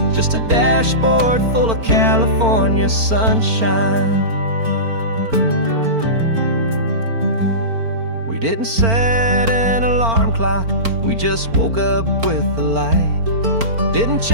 just a dashboard full of California sunshine. We didn't set an alarm clock, we just woke up with the light. Didn't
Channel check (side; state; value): left; late; 4.4 ms